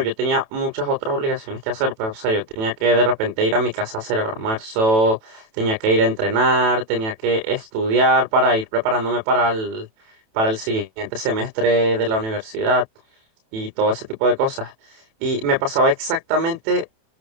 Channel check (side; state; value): left; late; 27 ms